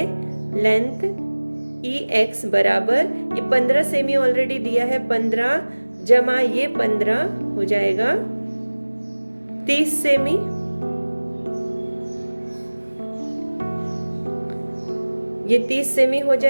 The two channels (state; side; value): inverted; both; correlation -1.00